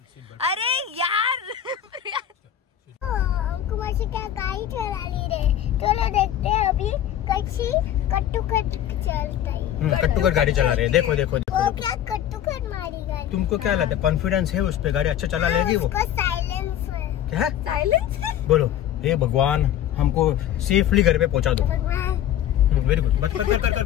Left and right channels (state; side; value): quieter; right; 10.9 dB